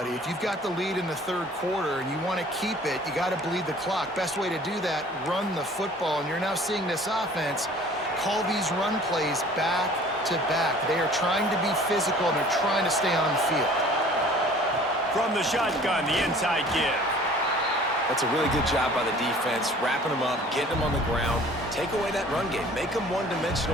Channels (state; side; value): normal; both; correlation 0.50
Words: If you've got the lead in the 3rd quarter and you want to keep it, you got to bleed the clock. Best way to do that, run the football. And you're now seeing this offense call these run plays back to back. They are trying to be physical, and they're trying to stay on the field. From the shotgun, the inside give. That's a really good job by the defense, wrapping them up, getting them on the ground. Take away that run game. Make them